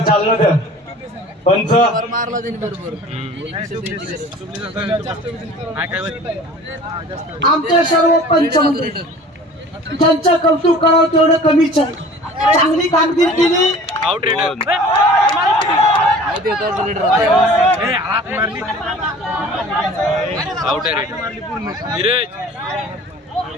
द्या. पंच आमचे सर्व पंच ज्यांचं कौतुक करावं तेवढं कमीच आहे. चांगली कामगिरी केली.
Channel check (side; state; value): both; normal; correlation 0.45